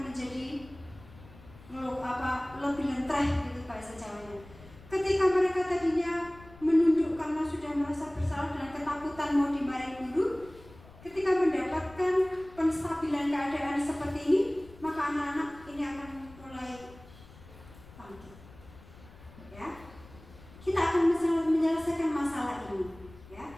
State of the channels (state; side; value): noise; left; rumble, 21 dB below the sound